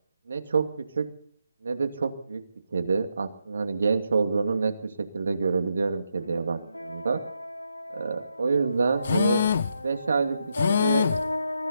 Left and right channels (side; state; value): both; inverted; correlation -0.81